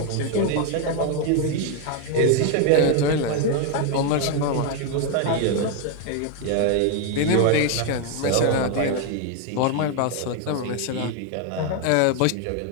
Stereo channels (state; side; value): different; both; correlation 0.01